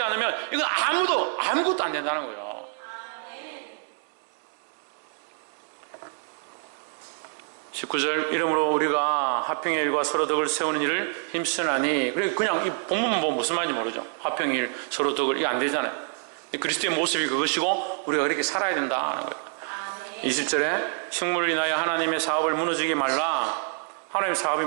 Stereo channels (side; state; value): left; silent; 57 dB below the other